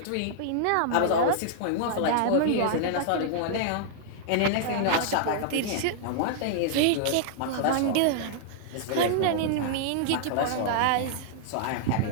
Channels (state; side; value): different; both; correlation -0.01